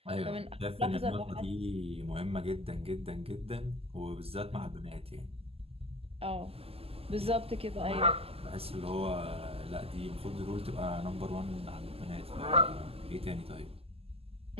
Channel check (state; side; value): late; left; 0.29 ms